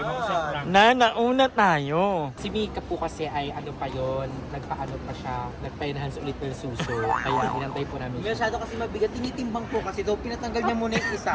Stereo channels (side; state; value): both; identical; correlation 1.00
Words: na. Nauna tayo. Si Mika po kasi ay ano pa yon, nagpaano pa siya, nagpa-enhance ulit ng suso. Kaya inantay po namin siya. Masyado kasi mabigat. Tinitimbang po kasi daw pinatanggal niya muna yung